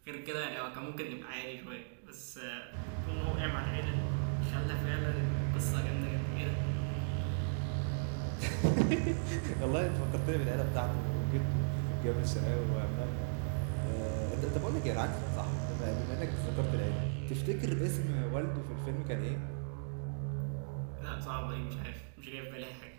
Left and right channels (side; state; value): left; silent; digital silence